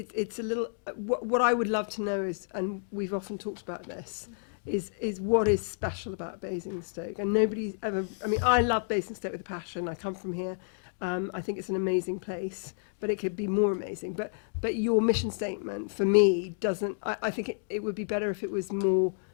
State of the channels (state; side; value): silent; right; digital silence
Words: a little. What I would love to know is, and we've often talked about this, is what is special about Basingstoke. And nobody's ever. I love Basingstoke with a passion. I come from here. I think it's an amazing place, but it could be more amazing. But your mission statement for me doesn't. I think it would be better if it was more